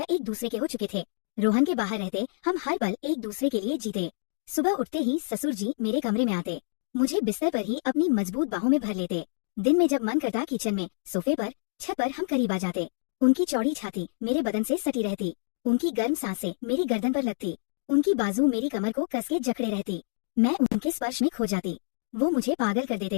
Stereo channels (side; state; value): right; silent; digital silence